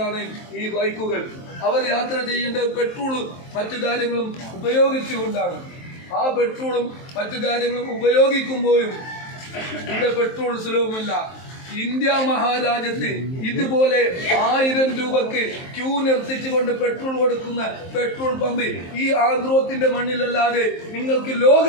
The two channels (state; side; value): late; right; 23 ms